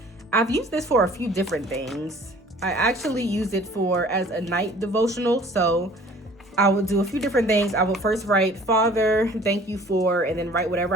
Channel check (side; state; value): both; normal; correlation 0.50